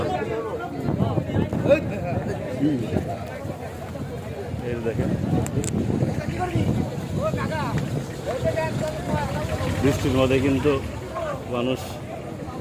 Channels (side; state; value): both; identical; correlation 1.00